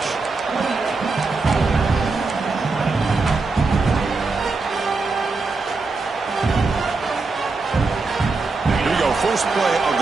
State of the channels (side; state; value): left; quieter; 3.9 dB